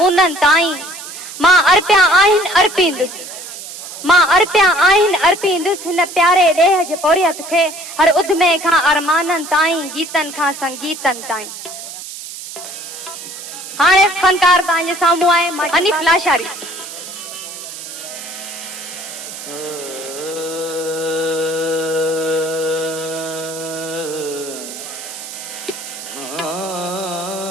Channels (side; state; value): right; noise; hiss, 11 dB below the sound